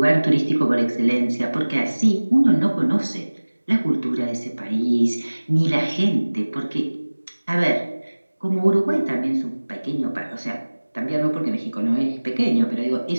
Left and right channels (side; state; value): both; inverted; correlation -1.00